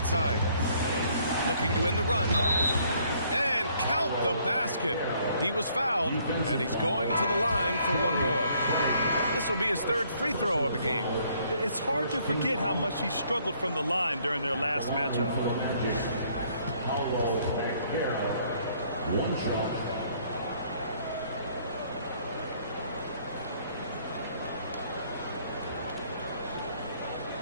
Looking to win the run. And count the basket. He was fouled, and he's going to the line for one more. This will be his 3rd free throw of the game. It's hard to forget how much he struggled from the line during their last matchup. One shot.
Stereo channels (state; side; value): inverted; both; correlation -0.64